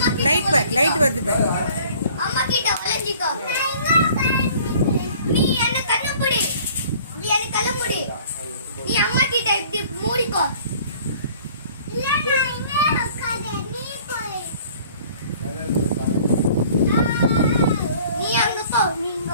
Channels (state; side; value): inverted; both; correlation -0.52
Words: லைட் பேக், லைட் வருது பேக். அம்மா கிட்ட ஒளிஞ்சிக்கோ. நீ என்ன கண்ணு மூடி, நீ என்ன கண்ணு மூடி. நீ அம்மா கிட்ட இப்படி மூடிக்கோ. இல்ல நான் இங்கே உட்கார்ந்தே, நீ போய். நீ அங்க போ, நீ